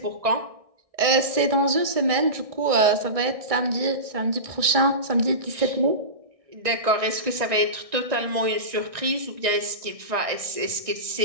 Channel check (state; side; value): late; left; 1.6 ms